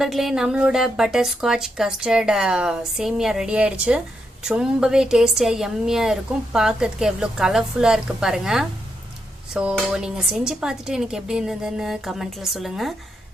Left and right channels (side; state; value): both; normal; correlation 0.82